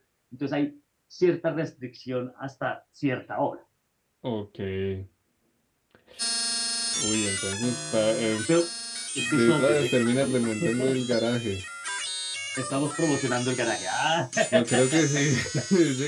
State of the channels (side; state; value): both; identical; correlation 1.00